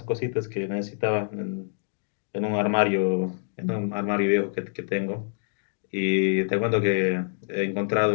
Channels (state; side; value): silent; right; digital silence